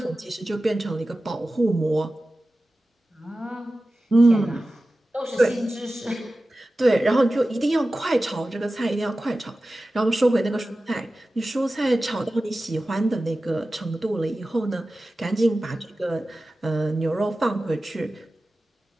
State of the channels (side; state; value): both; normal; correlation 0.95